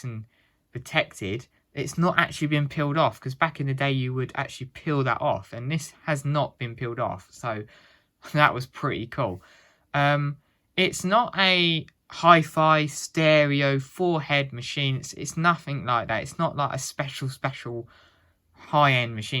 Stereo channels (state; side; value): identical; both; correlation 1.00